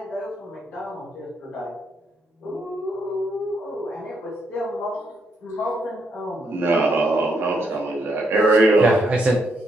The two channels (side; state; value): both; normal; correlation 0.77